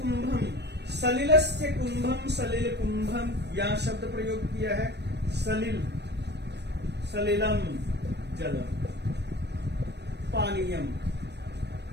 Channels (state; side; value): late; left; 0.49 ms